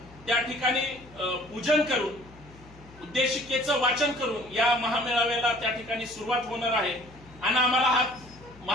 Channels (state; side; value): noise; left; hum, 22 dB below the sound